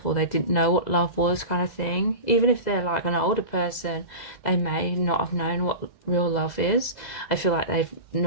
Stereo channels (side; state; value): right; late; 2.0 ms